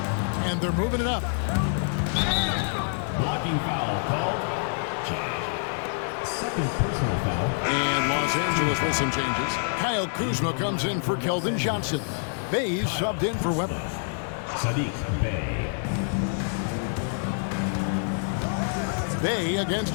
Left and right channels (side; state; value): right; silent; digital silence